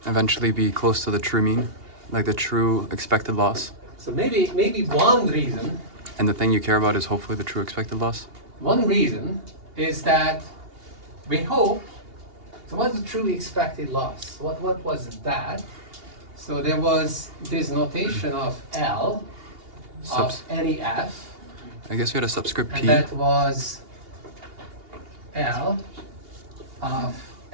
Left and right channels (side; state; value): left; late; 2.8 ms